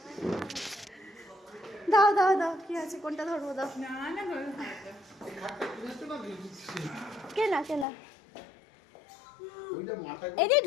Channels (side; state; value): right; drops out; at 7.9 s